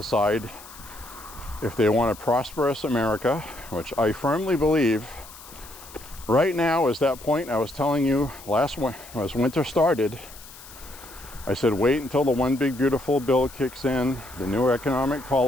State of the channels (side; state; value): left; noise; hiss, 18 dB below the sound